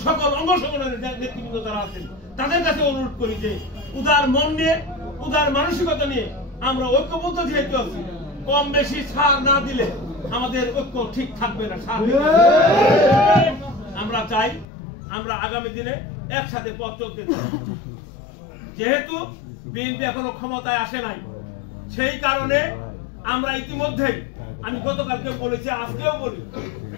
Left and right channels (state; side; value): drops out; right; at 14.7 s